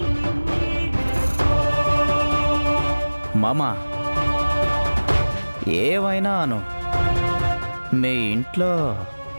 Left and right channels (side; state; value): both; inverted; correlation -1.00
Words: మామా, ఏవైనా అను, మీ ఇంట్లో